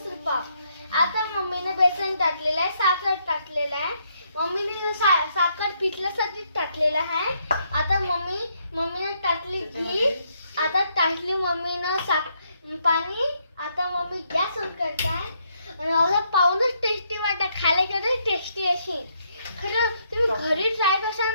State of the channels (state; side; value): inverted; both; correlation -0.74